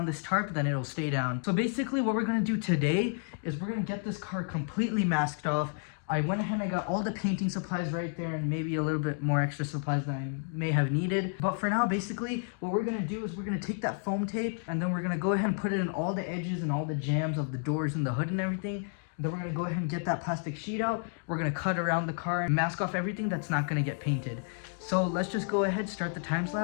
this tarp, then it'll stay down. So basically what we're going to do today is we're going to get this car completely masked off. I went ahead and I got all the painting supplies right there, and maybe a little bit more extra supplies than I may have needed. But for now, basically, what we're going to do is we're going to take that foam tape, and then we're going to go ahead and put it in all the edges and all the jams of the doors and the hood and everything. Then we're going to go ahead and get that plastic sheet out. We're going to cut around the car and mask off everything that's not going to get painted. So let's just go ahead, start the time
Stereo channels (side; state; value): right; silent; 57 dB below the other